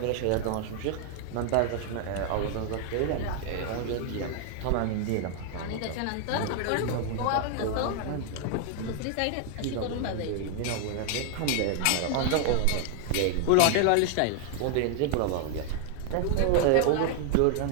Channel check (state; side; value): different; both; correlation 0.00